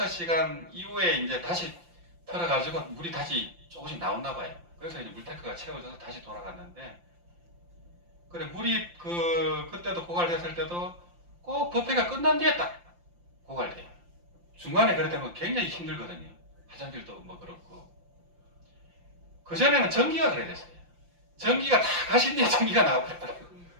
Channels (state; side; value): late; left; 5.8 ms